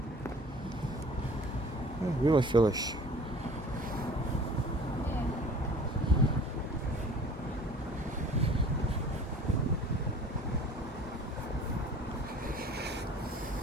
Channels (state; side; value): normal; both; correlation 0.47